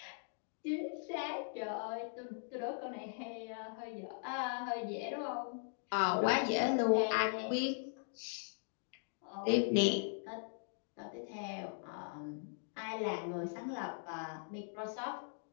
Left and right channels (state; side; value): silent; right; digital silence